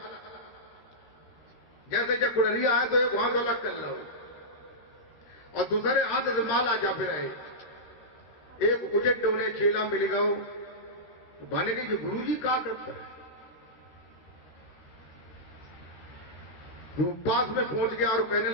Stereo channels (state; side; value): late; right; 13 ms